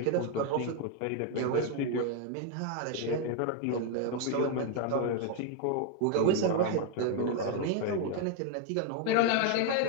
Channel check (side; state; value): both; different; correlation 0.00